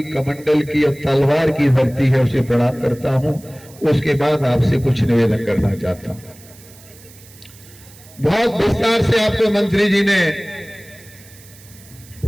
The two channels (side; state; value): right; noise; hiss, 23 dB below the sound